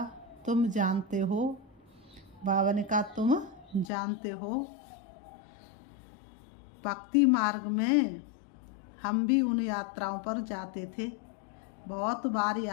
तुम जानते हो, बाबा ने कहा तुम जानते हो, भक्ति मार्ग में हम भी उन यात्राओं पर जाते थे। बहुत बार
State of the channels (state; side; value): drops out; right; at 3.9 s